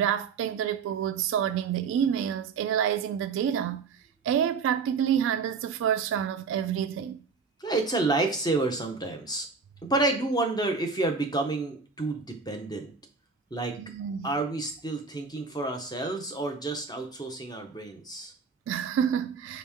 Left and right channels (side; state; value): left; quieter; 5.2 dB